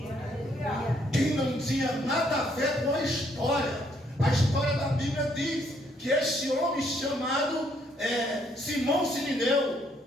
Quem não tinha nada a ver com a história da Bíblia diz que este homem chamado Simão Sirineu,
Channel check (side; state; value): both; normal; correlation 0.69